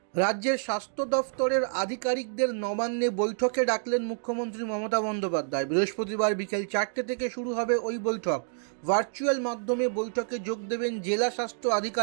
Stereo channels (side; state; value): left; silent; digital silence